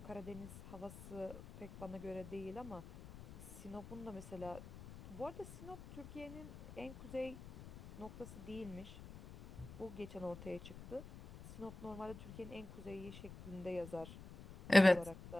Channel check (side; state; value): left; noise; rumble, 14 dB below the sound